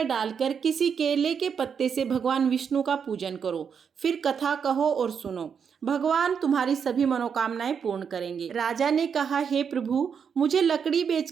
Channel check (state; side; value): quieter; left; 6.9 dB